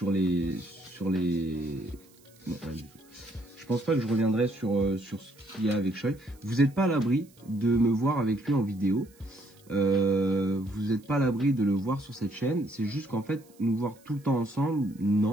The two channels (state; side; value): noise; right; hiss, 29 dB below the sound